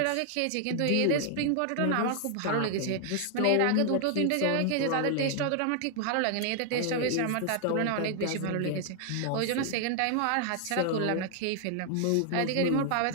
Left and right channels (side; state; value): both; different; correlation 0.00